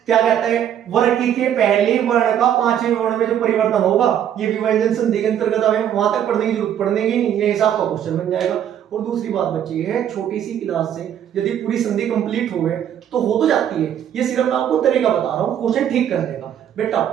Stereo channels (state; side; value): quieter; left; 9.9 dB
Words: क्या कहता है? वर्ग के पहले वर्ण का पांचवें वर्ण में जो परिवर्तन होगा, ये भी व्यंजन संधि के अंतर्गत आवे। वहां तक पढ़ने की जरूरत पड़ने की नहीं, ये हिसाब का क्वेश्चन बन जाएगा। और दूसरी बात बच्ची है, छोटी सी क्लास से यदि पूरी संधि कंप्लीट हो गए तो हो तो जाती है, ये सिर्फ मैं आपको तरीका बता रहा हूँ क्वेश्चन ठीक करने का। बेटा